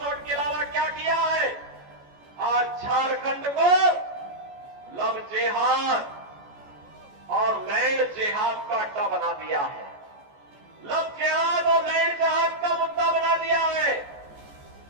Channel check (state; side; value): late; left; 14 ms